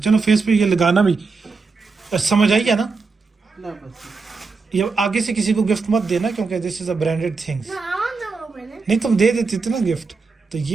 फेस पे ये लगाना भी समझ आई है ना. ला बस. ये आगे से किसी को गिफ्ट मत देना क्योंकि this is a branded things. No, I want to open it. नहीं, तुम दे देती थी ना गिफ्ट, तो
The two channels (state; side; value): quieter; left; 4.4 dB